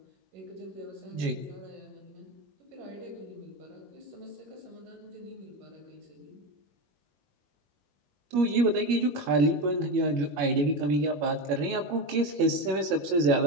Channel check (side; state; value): left; late; 21 ms